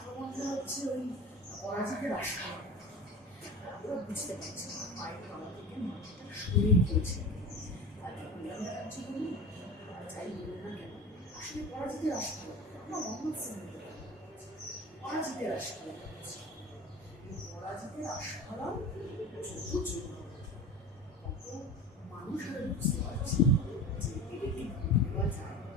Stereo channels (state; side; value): normal; both; correlation 0.34